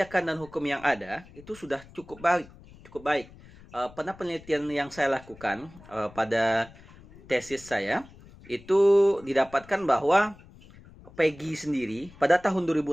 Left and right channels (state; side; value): noise; left; rumble, 22 dB below the sound